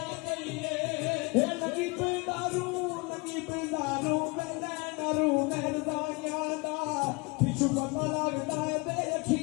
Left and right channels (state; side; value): quieter; right; 27.9 dB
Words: करिए लगी पिंडारू मैं नरू महरदानिया दा पिछू पता लगदा है ते